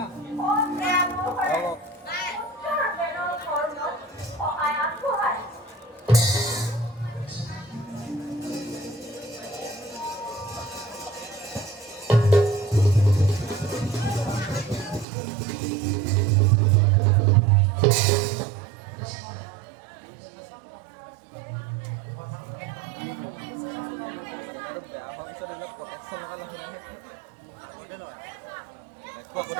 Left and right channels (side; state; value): left; drops out; at 15.1 s